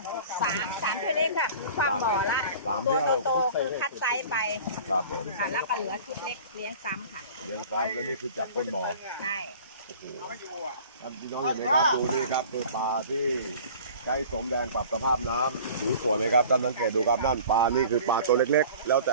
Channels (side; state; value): both; inverted; correlation -0.44